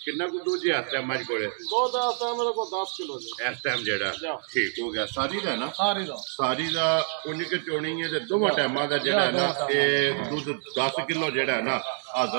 ਕਿੰਨਾ ਕੁ ਦੂਜੇ ਹੱਥ ਹੈ ਮੱਝ ਕੋਲੇ ਦੋ ਦਾ ਮੇਰੇ ਕੋਲ 10 ਕਿਲੋ ਜੀ ਇਸ ਟਾਈਮ ਜਿਹੜਾ ਠੀਕ ਹੋ ਗਿਆ ਸਾਰੀ ਦਾ ਨਾ ਸਾਰੀ ਦਾ ਉਨੀ ਕਿ ਚੋਣੀ ਹੈ ਤੇ ਦੋਵਾਂ ਟਾਈਮਾਂ ਦਾ ਜਿਹੜਾ ਨਾ ਇਹ ਦੁੱਧ 10 ਕਿਲੋ ਜਿਹੜਾ ਨਾ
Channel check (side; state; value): left; silent; 60 dB below the other